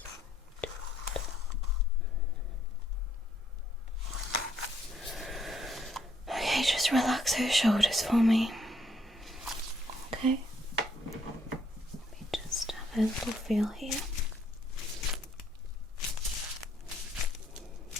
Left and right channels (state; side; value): normal; both; correlation 0.70